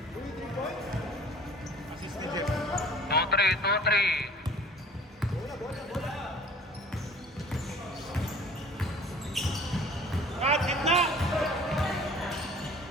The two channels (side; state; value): both; normal; correlation 0.48